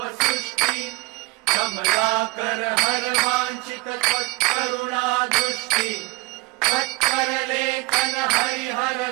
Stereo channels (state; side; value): quieter; left; 24.7 dB